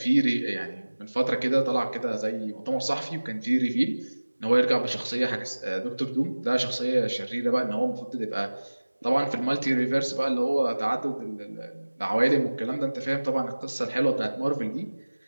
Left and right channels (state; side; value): inverted; both; correlation -1.00